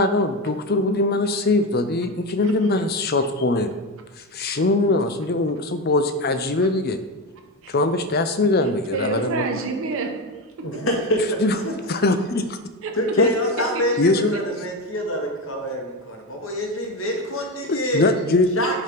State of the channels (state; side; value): normal; both; correlation 0.17